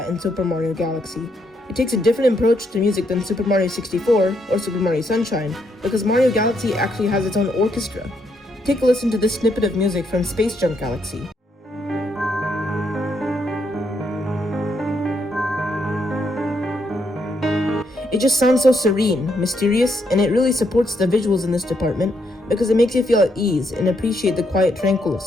in Super Mario Galaxy. It takes a different approach to music than Super Mario 64 or Super Mario Sunshine, because Mario Galaxy actually has its own orchestra. Take a listen to this snippet of music from Space Junk Galaxy. It just sounds so serene, mysterious, and it really supports the visuals in this department because it makes you feel at ease and appreciate the quiet tranquil of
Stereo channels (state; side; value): normal; both; correlation 0.76